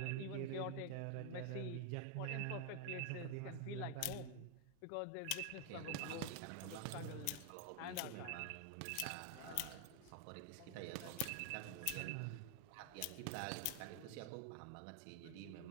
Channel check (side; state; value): both; different; correlation 0.01